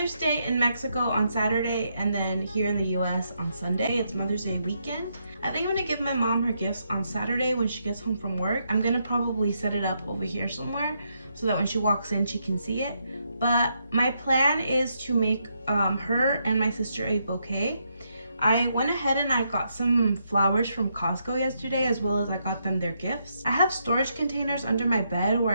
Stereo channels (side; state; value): both; inverted; correlation -0.78